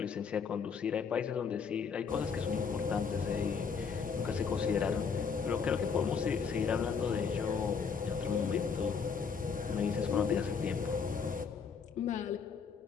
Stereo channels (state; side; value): quieter; right; 6.0 dB